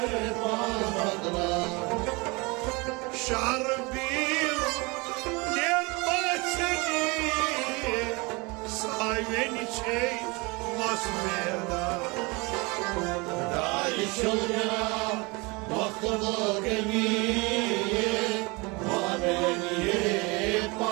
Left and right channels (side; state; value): left; quieter; 26.7 dB